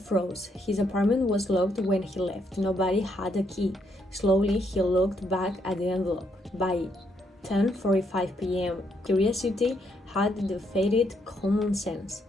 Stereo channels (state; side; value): normal; both; correlation 0.75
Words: His apartment was locked when he left. Nobody had a key. Slowly, he looked back at the envelope. By 10:45 p.m., curiosity had defeated common sense.